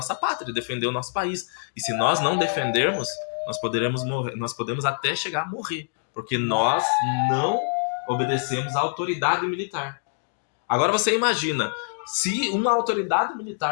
pátria, defender o nosso país. E se nós não defendermos, nós poderemos morrer, nós podemos até chegar a morrer, porque nós não obedecemos à autoridade militar. Agora você imagina, se uma autoridade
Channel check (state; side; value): silent; right; digital silence